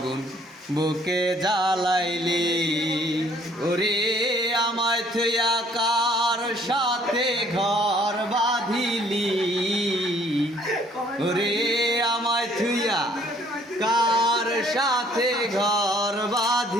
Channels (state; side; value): normal; both; correlation 0.60